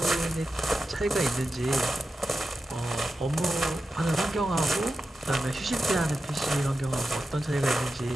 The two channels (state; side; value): normal; both; correlation 0.92